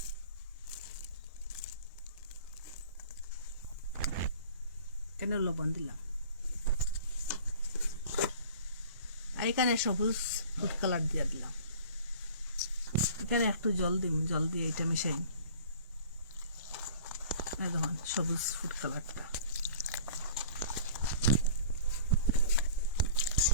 কেন লবণ দিলাম, আর এখানে সবুজ ফুড কালার দিয়ে দিলাম। এখানে একটু জল দিন, জল দিয়ে এটা মিশাই। দেখুন সবুজ ফুড কালারটা,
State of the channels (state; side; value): inverted; both; correlation -0.44